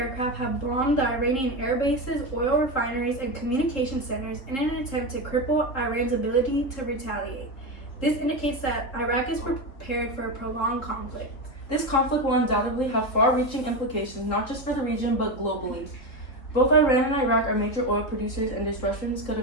have bombed the Iranian air bases, oil refineries, and communication centers in an attempt to cripple Iran's ability to retaliate. This indicates that Iraq is prepared for a prolonged conflict. This conflict will undoubtedly have far-reaching implications, not just for the region, but globally. Both Iran and Iraq are major oil producers, and disruptions could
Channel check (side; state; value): right; late; 3.8 ms